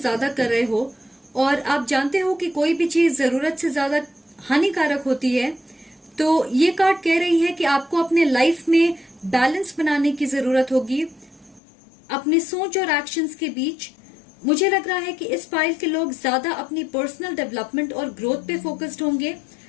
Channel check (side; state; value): right; drops out; at 11.6 s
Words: कर रहे हो, और आप जानते हो कि कोई भी चीज जरूरत से ज्यादा हानिकारक होती है। तो ये कार्ड कह रही है कि आपको अपने लाइफ में बैलेंस बनाने की जरूरत होगी अपनी सोच और एक्शंस के बीच। मुझे लग रहा है कि इस फाइल के लोग ज्यादा अपनी पर्सनल डेवलपमेंट और ग्रोथ पे फोकस्ड होंगे।